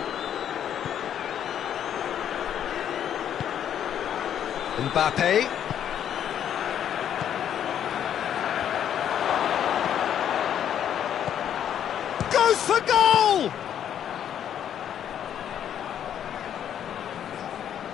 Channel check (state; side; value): quieter; right; 9.7 dB